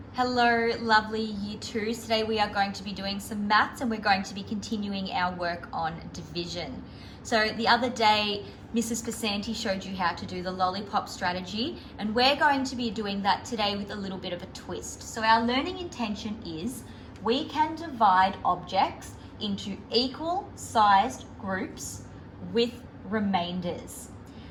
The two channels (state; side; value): identical; both; correlation 1.00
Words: Hello, lovely Year 2s. Today we are going to be doing some maths and we're going to be continuing our work on division. So the other day, Mrs. Pasanti showed you how to do the lollipop strategy, and we're going to be doing that today with a little bit of a twist. So our learning intention is we can divide objects into equal sized groups with remainders.